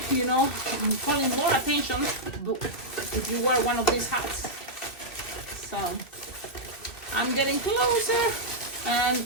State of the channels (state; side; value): late; right; 2.7 ms